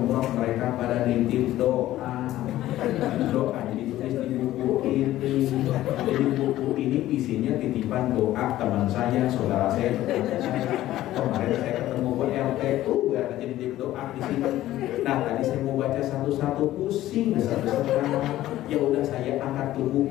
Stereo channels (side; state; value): right; quieter; 14.5 dB